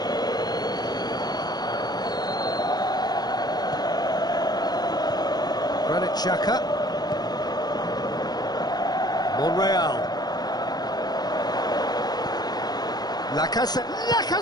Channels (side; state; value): right; late; 0.19 ms